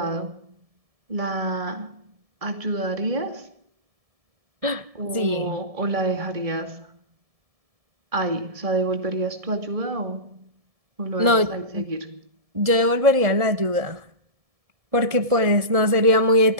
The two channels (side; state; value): left; late; 1.7 ms